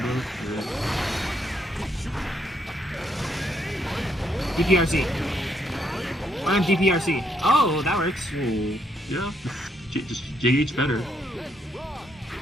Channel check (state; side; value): normal; both; correlation 0.74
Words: Yeah. DPRC. I'm DPRC. Oh, that works. Oh, yeah. Just JH better.